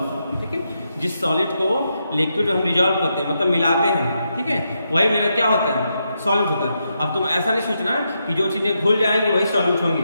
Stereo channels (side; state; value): both; inverted; correlation -0.83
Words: ठीक है, जिस सॉलिड को लिक्विड में हम डिसॉल्व करते हैं मतलब मिलाते हैं, ठीक है, वही मेरा क्या होता है, सॉल्यूट होता है। अब तुम ऐसा नहीं सोचना कि जो चीजें घुल जाएंगी वही सॉल्यूट